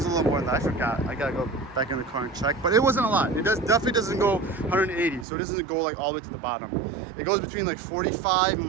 a little more than that. I forgot. I gotta go back in the car and check. But it wasn't a lot. It definitely doesn't go 180. So it doesn't go like all the way to the bottom. It goes between like 45 and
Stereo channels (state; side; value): drops out; left; at 5.2 s